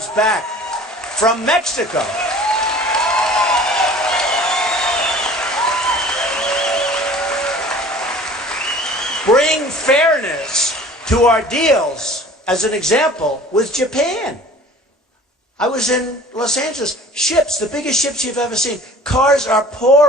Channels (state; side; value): normal; both; correlation 0.46